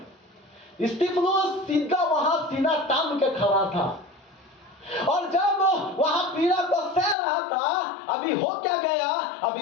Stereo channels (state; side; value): drops out; right; at 7.2 s